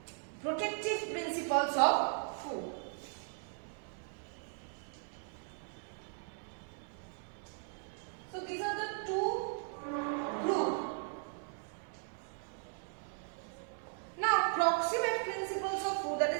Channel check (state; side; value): silent; left; 53 dB below the other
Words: protective principles of food. So these are the two groups. Now proximate principles of food, that